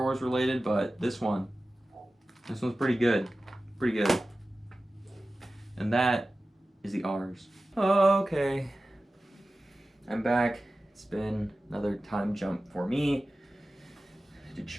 Wars related, but this one's pretty good. Pretty good. And that is the R's. Okay. I'm back. It's been another time jump for me to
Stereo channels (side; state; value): both; normal; correlation 0.95